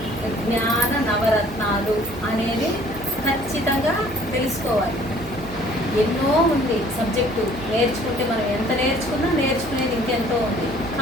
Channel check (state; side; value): noise; right; hum, 16 dB below the sound